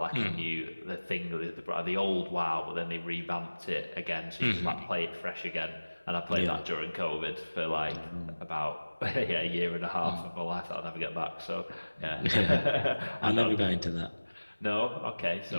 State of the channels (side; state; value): both; inverted; correlation -1.00